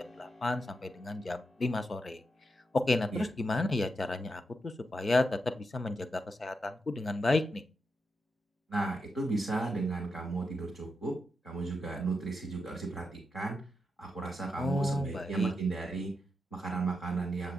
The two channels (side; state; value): both; normal; correlation 0.85